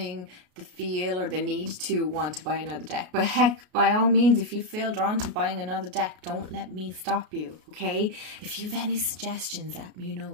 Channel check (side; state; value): left; late; 33 ms